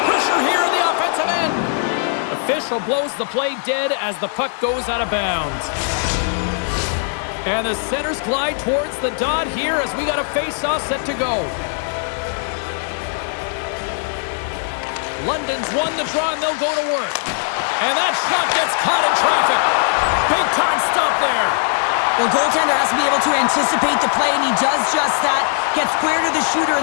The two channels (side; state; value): right; silent; 65 dB below the other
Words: pressure here in the offensive end. Official blows the play dead as the puck goes out of bounds. And the centers glide towards the dot here as we got a face-off set to go. London's won the draw and they'll go to work. And that shot gets caught in traffic. Big time stop there. Well, goaltender has to be able to anticipate the play, and he does just that. Gets square to the shooter